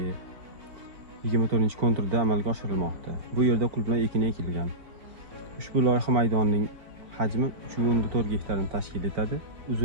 24-konturda amalga oshirilmoqda. Bu yerda qulupnay ekini ekilgan. Ushbu loyiha maydonining hajmi 3.4 gektarni tashkil etadi.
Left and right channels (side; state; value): left; late; 4.4 ms